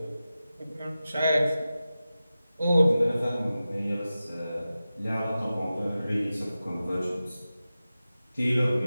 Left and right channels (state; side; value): inverted; both; correlation -0.94